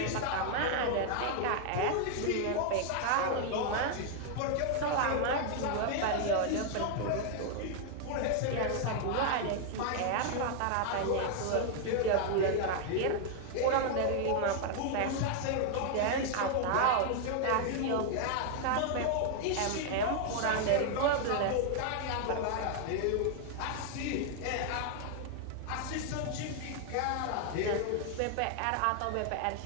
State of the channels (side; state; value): both; different; correlation 0.00